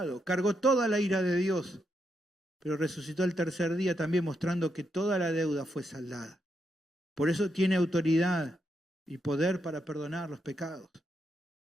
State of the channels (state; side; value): normal; both; correlation 0.81